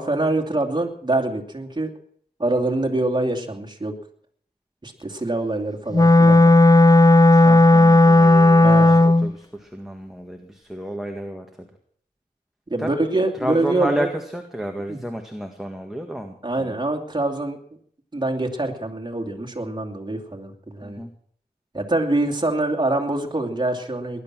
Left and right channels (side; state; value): both; normal; correlation 0.83